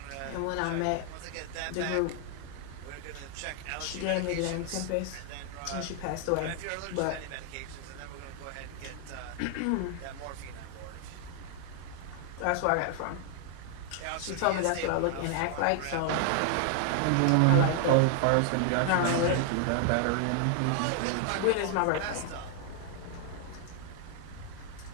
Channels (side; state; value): both; different; correlation 0.00